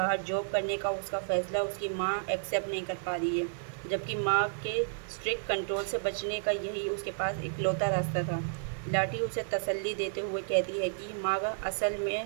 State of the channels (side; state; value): left; silent; 57 dB below the other